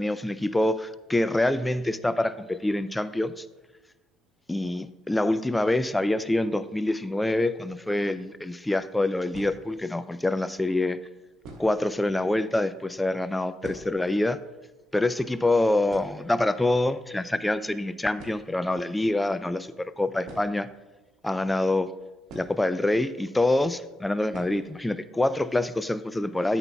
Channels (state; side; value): normal; both; correlation 0.94